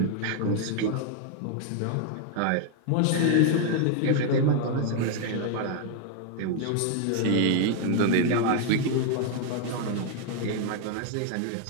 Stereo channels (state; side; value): different; both; correlation 0.00